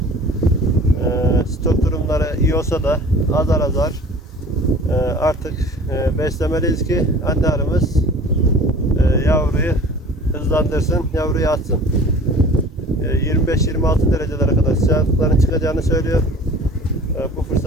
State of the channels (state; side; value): normal; both; correlation 0.45